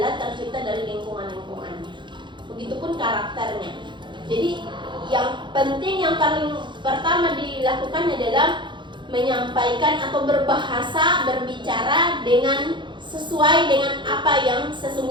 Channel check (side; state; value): left; late; 0.23 ms